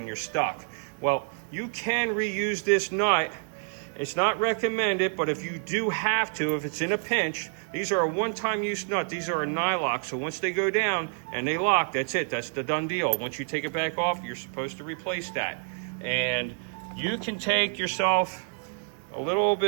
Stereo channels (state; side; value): silent; left; 59 dB below the other